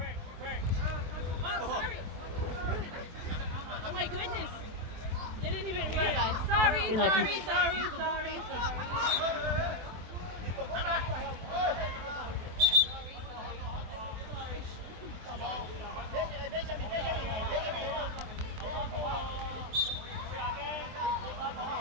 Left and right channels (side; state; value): left; late; 23 ms